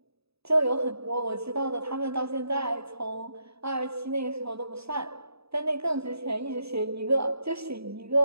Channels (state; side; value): late; left; 0.78 ms